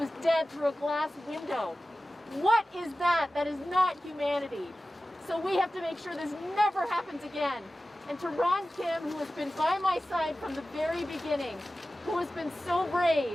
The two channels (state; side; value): normal; both; correlation 0.95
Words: dead through a glass window. What is that? That is not humanity. So we have to make sure this never happens again. And to Ron Kim, who has been by my side from the very beginning, who has been so